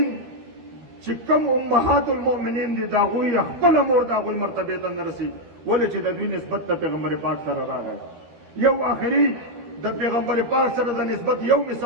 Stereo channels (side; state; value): left; late; 13 ms